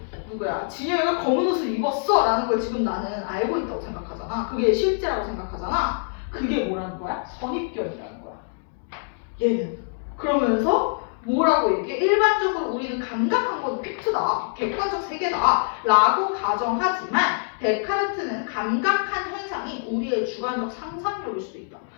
진영이가 검은 옷을 입었어 라는 걸 지금 나는 알고 있다고 생각하잖아. 그게 실제라고 생각하잖아. 그게 뭐라는 거야? 선입견이라는 거야. 얘는. 그러면서 뭐라고 얘기해? 일반적으로 우리는 감각한 건 픽트다, 객관적 세계다 라고 가정하지만 데카르트는 감각한 현상이 우리의 주관적 상상력일 수도 있다.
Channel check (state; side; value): silent; right; digital silence